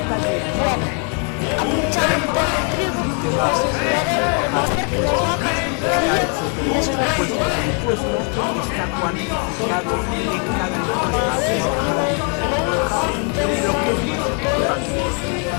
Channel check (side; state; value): right; quieter; 39.7 dB